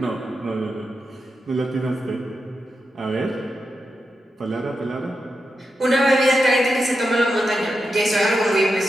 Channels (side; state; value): both; normal; correlation 0.88